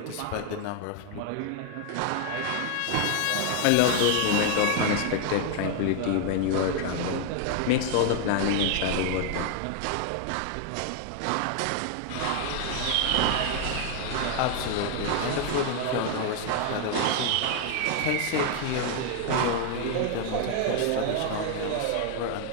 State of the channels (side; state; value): both; different; correlation 0.01